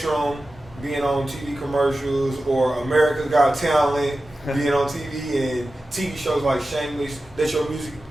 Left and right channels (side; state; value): both; normal; correlation 0.94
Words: being on TV commercials or America's Got Talent being on TV and TV shows like Shameless that your music